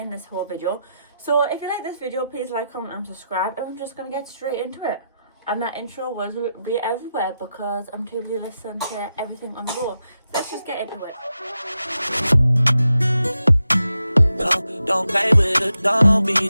this whole video. So if you like this video, please like, comment and subscribe, and I'm just going to get straight into it. And that intro was be everywhere because I'm too busy listening to everything on the go. So let's just get into it. Don't play with it, don't be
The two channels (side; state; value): both; inverted; correlation -0.87